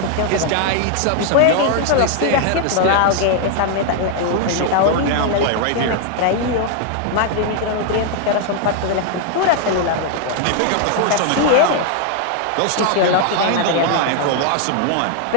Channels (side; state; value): both; different; correlation 0.00